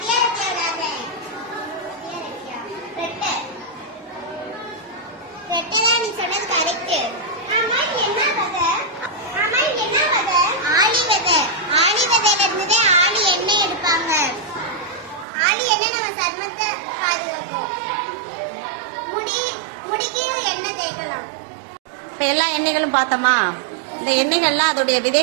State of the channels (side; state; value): left; drops out; at 15.2 s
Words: ரெட்டை நீ சொன்னது கரெக்ட். ஆமா, நீ என்ன விதை? ஆமா, நீ என்ன விதை? ஆளி விதை. ஆளி விதையில இருந்ததே ஆளி எண்ணெய் எடுப்பாங்க. ஆளி எண்ணெய் நம்ம சர்மத்தை பாதுகாக்கும். முடிக்கு எண்ணெய் தேய்க்கலாம். இப்போ எல்லா எண்ணெய்களும் பார்த்தோமா? இந்த எண்ணெய்கள்லாம் அதோடைய